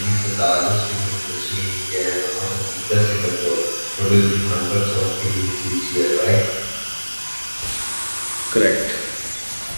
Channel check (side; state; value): both; inverted; correlation -1.00